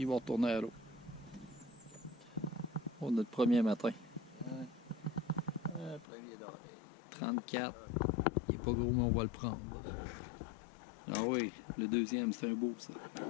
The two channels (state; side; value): drops out; right; at 6.1 s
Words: vont retourner à l'eau. Pour notre premier matin. Un premier d'oreille. 34. Il est pas gros, mais on va le prendre. Ah oui, le deuxième, c'est un beau, ça.